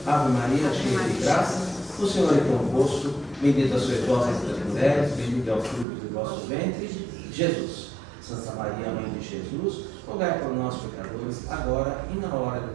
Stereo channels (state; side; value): drops out; left; at 5.9 s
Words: Ave Maria, cheia de graça, o Senhor é convosco, bendita sois vós entre as mulheres, bendito é o fruto do vosso ventre, Jesus. Santa Maria, Mãe de Jesus, rogai por nós, pecadores, agora e na hora